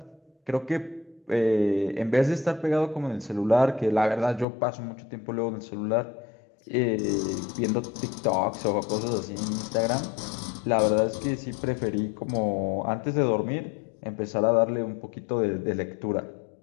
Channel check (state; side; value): drops out; right; at 4.5 s